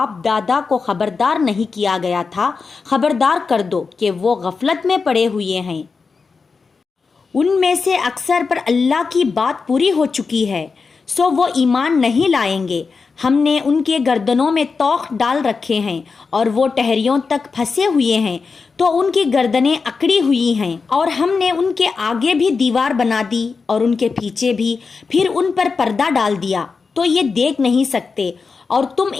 دادا کو خبردار نہیں کیا گیا تھا خبردار کر دو کہ وہ غفلت میں پڑے ہوئے ہیں۔ ان میں سے اکثر پر اللہ کی بات پوری ہو چکی ہے، سو وہ ایمان نہیں لائیں گے۔ ہم نے ان کے گردنوں میں توق ڈال رکھے ہیں اور وہ ٹہریوں تک پھنسے ہوئے ہیں تو ان کی گردنیں اکڑی ہوئی ہیں، اور ہم نے ان کے آگے بھی دیوار بنا دی اور ان کے پیچھے بھی، پھر ان پر پردہ ڈال دیا تو یہ دیکھ نہیں سکتے، اور تم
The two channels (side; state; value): right; quieter; 4.8 dB